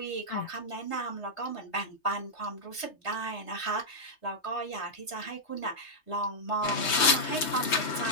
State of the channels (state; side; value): late; right; 3.2 ms